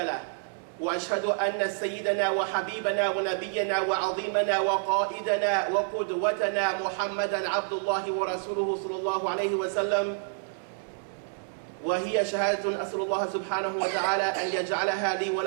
وأشهد أن سيدنا وحبيبنا ونبينا وعظيمنا وقائدنا وقدوتنا محمدا عبد الله ورسوله صلى الله عليه وسلم، وهي شهادة أسأل الله سبحانه وتعالى أن يجعلها لي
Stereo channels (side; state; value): left; silent; 59 dB below the other